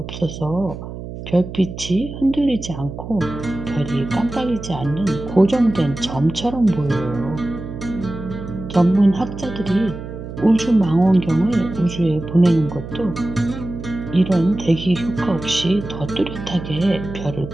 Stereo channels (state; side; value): noise; right; hum, 10 dB below the sound